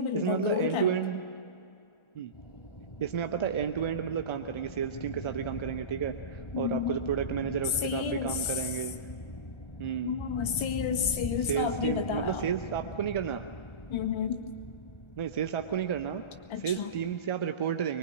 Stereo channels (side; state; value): right; late; 1.3 ms